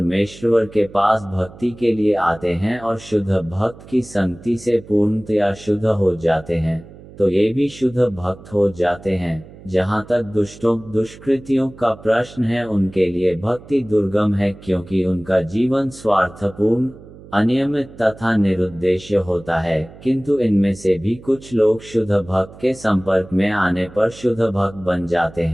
के पास भक्ति के लिए आते हैं और शुद्ध भक्त की संगति से पूर्णतया शुद्ध हो जाते हैं, तो ये भी शुद्ध भक्त हो जाते हैं। जहाँ तक दुष्टों, दुष्कृतियों का प्रश्न है, उनके लिए भक्ति दुर्गम है, क्योंकि उनका जीवन स्वार्थपूर्ण, अनियमित तथा निरुद्देश्य होता है। किंतु इनमें से भी कुछ लोग शुद्ध भक्त के संपर्क में आने पर शुद्ध भक्त बन जाते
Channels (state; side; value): noise; right; hum, 19 dB below the sound